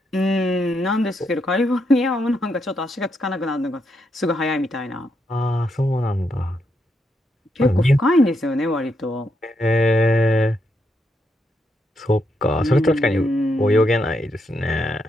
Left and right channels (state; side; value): normal; both; correlation 0.80